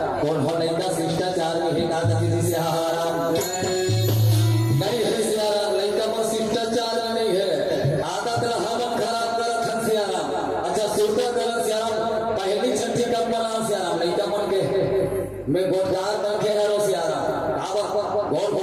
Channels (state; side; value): identical; both; correlation 1.00